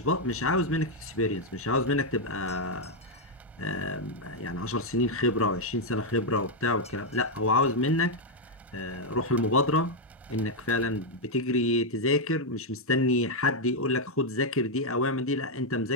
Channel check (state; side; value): normal; both; correlation 0.00